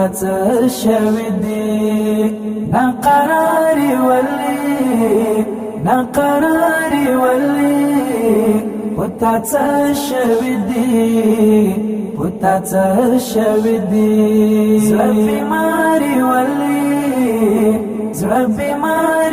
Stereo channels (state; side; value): identical; both; correlation 1.00